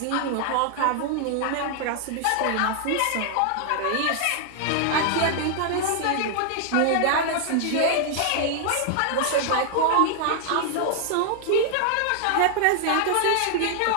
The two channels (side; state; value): both; different; correlation 0.00